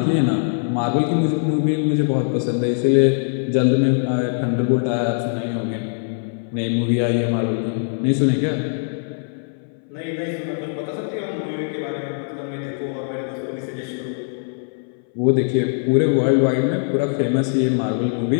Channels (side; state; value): right; silent; 60 dB below the other